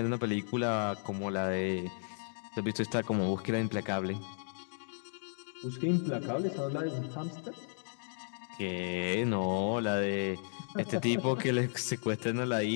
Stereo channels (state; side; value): silent; right; digital silence